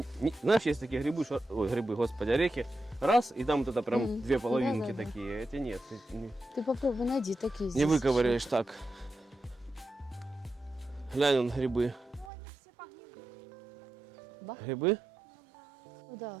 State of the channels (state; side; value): drops out; left; at 12.3 s